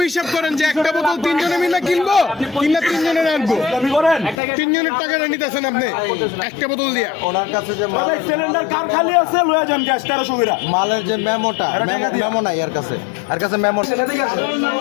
হিসাব করেন যে একটা বোতল 3 জনে মিলে কিনবো, কিনা 3 জনে রাখবো, দাবি করেন? 3 জনের টাকাটা নিতেছেন আপনি একটা বোতল দিয়া? ওনার কাছে যে সিলিন্ডার কার খালি আছে লয়ে যান গ্যাস 1300 করে। মালের যে মেমোটা, মেমো নাই এর কাছে, এর কাছে মেমো।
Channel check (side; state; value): right; drops out; at 4.4 s